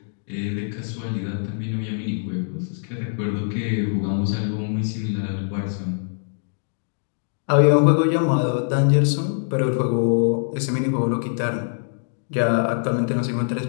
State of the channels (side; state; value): right; silent; digital silence